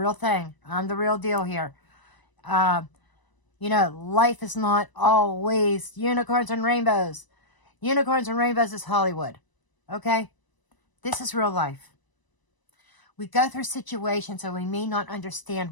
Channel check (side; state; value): right; late; 1.0 ms